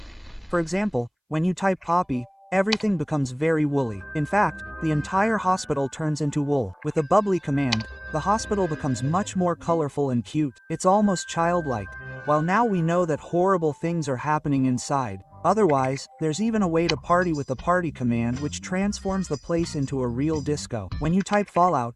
For example, when you type Poppy, everything becomes very woolly. In fact, the entire hospital turns into wool. With a bubbly command, the hospital becomes much more colorful and cute. It's almost childlike. While now we know that horrible things are happening inside. Otherwise, there's even a way to party with the party command, which transforms the place into a real disco. When you type Fallout,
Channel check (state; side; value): identical; both; correlation 1.00